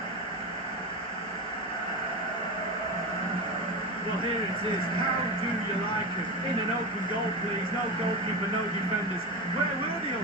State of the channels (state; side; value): normal; both; correlation 0.21